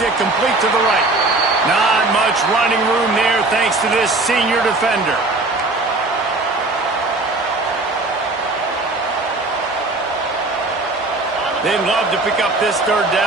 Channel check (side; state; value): left; quieter; 3.1 dB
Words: it complete to the right. Not much running room there thanks to this senior defender. They'd love to pick up this third